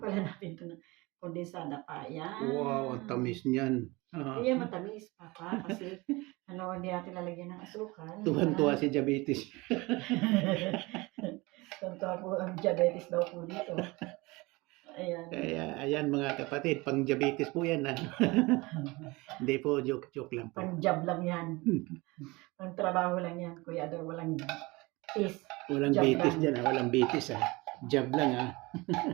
natin ito ng kondensada pa. Ayan. Wow, ang tamis niyan. Kaya matamis, Papa. Kasi hindi natin lalagyan ng asukal. Tuhan-tuwa si diabetes. Tuhan-tuwa po ang diabetes daw po dito. Ayan. Kaya, ayan mga kapatid, pang diabetes po yan. Hindi po, joke lang po. Pang-job lang yan. Pang-trabaho lang yan. Kuya Ador, walang tis. Walang Job bitis lang. dyan, walang bitis Job lang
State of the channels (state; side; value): quieter; left; 23.4 dB